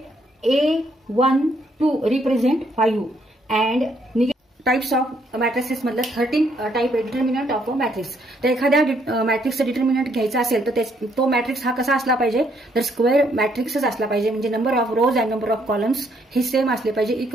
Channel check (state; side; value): normal; both; correlation 0.70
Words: A12 represent 5 and types of matrices मधलं 13 टाइप आहे डिटर्मिनंट ऑफ अ मॅट्रिक्स. तर एखाद्या मॅट्रिक्सचं डिटर्मिनंट घ्यायचं असेल तर तो मॅट्रिक्स हा कसा असला पाहिजे, तर स्क्वेअर मॅट्रिक्सच असला पाहिजे. म्हणजे number of rows and number of columns हे सेम असले पाहिजे,